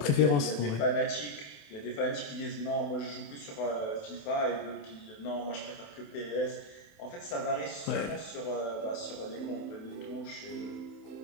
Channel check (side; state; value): right; late; 28 ms